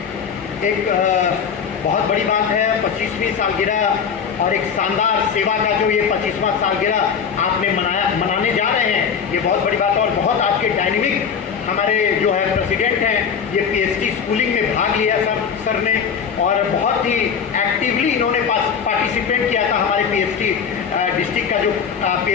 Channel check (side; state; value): right; quieter; 6.9 dB